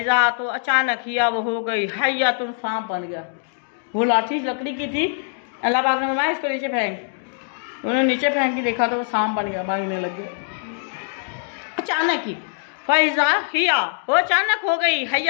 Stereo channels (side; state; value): right; silent; digital silence